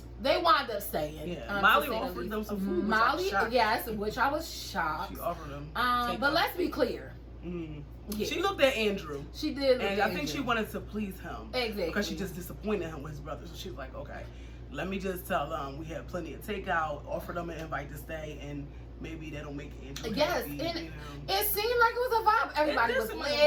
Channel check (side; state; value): both; identical; correlation 1.00